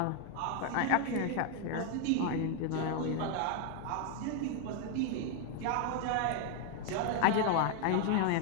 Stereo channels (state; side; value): different; both; correlation 0.01